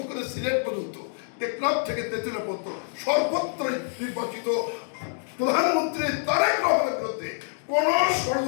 করে সিলেট পর্যন্ত, টেকনাফ থেকে তেঁতুলিয়া পর্যন্ত সর্বত্রই নির্বাচিত প্রধানমন্ত্রী তারেক রহমানের বিরুদ্ধে কোন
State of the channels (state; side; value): silent; right; digital silence